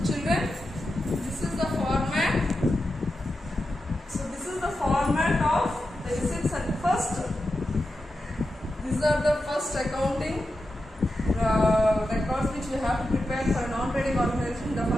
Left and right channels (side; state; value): both; normal; correlation 0.90